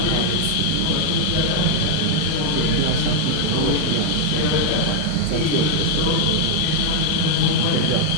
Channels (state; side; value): different; both; correlation 0.00